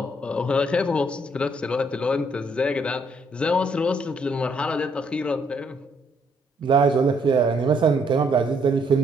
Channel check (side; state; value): both; normal; correlation 0.69